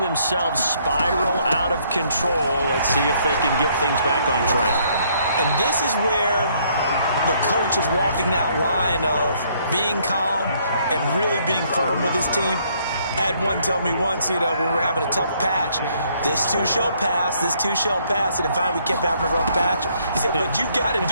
themselves spiral out of control. Let's see if they can get things back on track. And this is where the coach is walking that line of being calm and really being firm with his team. I had one tell me once, when we were having a tough patch, this too shall pass, this too shall pass. And finally we kept having a rough patch. He said, but you got to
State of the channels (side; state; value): both; inverted; correlation -0.67